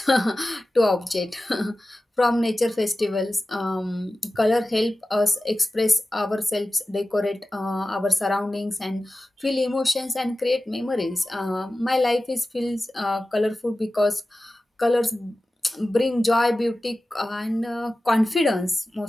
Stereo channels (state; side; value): normal; both; correlation 0.95